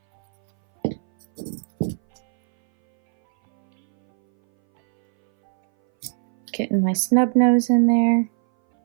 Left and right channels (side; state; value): left; silent; 62 dB below the other